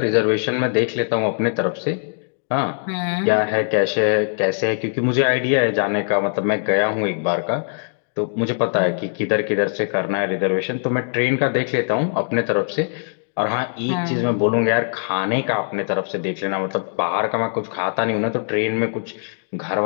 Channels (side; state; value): right; silent; 65 dB below the other